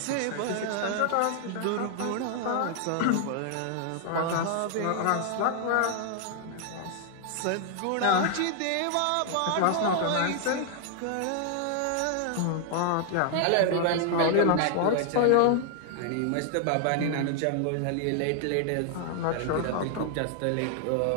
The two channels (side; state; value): both; different; correlation 0.00